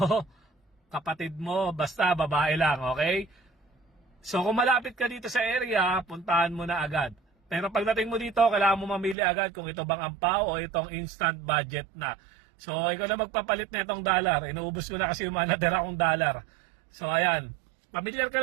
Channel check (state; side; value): drops out; left; at 9.2 s